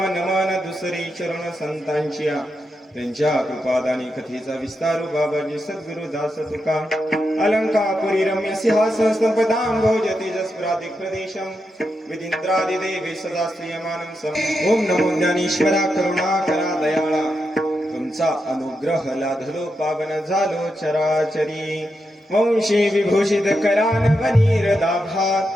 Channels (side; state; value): both; normal; correlation 0.85